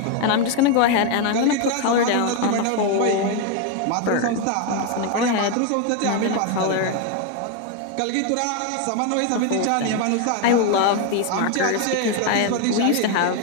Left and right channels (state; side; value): different; both; correlation 0.01